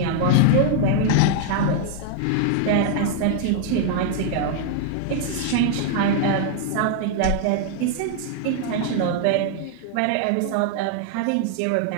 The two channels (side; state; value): both; different; correlation 0.00